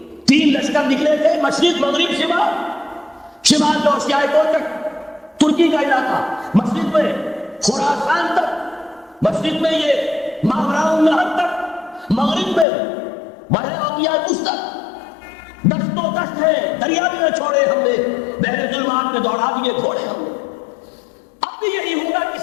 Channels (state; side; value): drops out; right; at 12.7 s